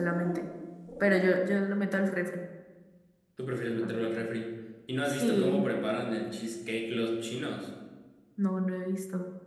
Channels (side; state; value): both; identical; correlation 1.00